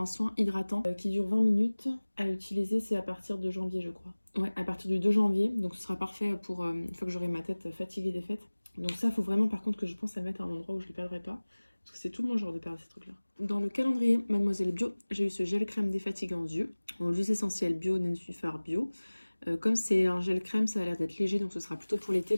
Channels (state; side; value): inverted; both; correlation -1.00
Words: soin hydratant qui dure 20 minutes. À utiliser, c'est à partir de janvier, je crois. Ouais, à partir du 2 janvier. Donc ce sera parfait pour une fois que j'aurai ma tête fatiguée des fêtes. Donc ça, faut vraiment par contre que je pense à le mettre à un endroit où je ne le perdrai pas. Parce que c'est tout mon genre de perdre ces trucs-là. Dans le calendrier Mademoiselle Bio, j'ai eu ce gel crème défatigant yeux. En huile essentielle bio, Nensuphar bio. Comme c'est un gel crème, ça a l'air d'être léger, donc ce sera plutôt pour l'été